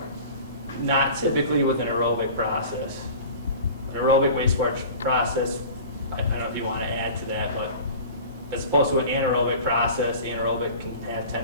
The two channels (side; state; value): both; inverted; correlation -0.39